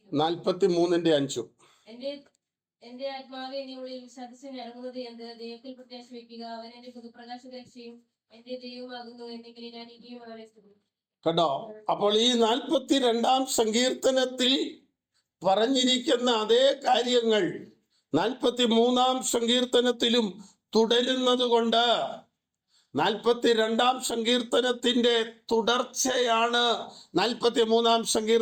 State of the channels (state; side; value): identical; both; correlation 1.00